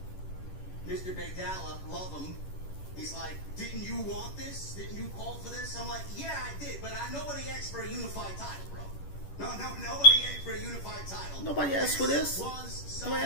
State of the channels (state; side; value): late; right; 10 ms